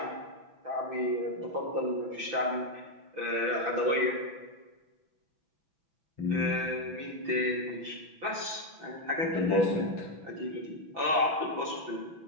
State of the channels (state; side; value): late; left; 6.0 ms